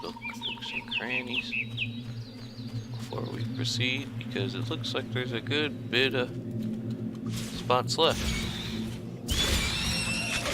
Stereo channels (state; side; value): identical; both; correlation 1.00